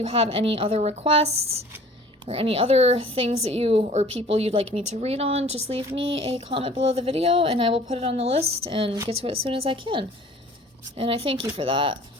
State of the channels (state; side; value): normal; both; correlation 0.49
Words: have any other requests or any other things that you or people you'd like me to read on, just leave me a comment below the video and I will put it on the list and get to it as soon as I can. And I thank you for that.